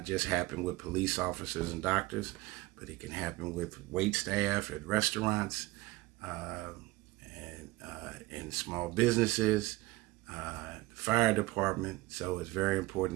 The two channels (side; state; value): left; quieter; 19.7 dB